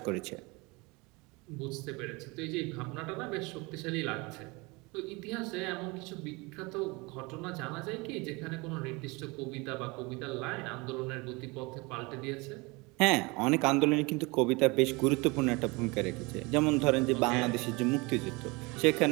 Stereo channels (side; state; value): left; quieter; 25.9 dB